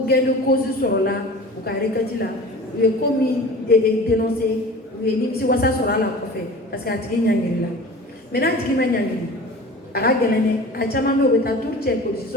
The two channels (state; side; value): normal; both; correlation 0.40